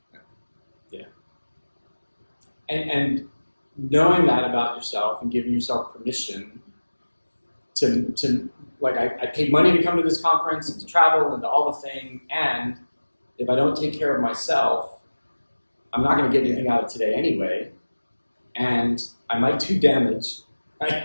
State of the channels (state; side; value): inverted; both; correlation -1.00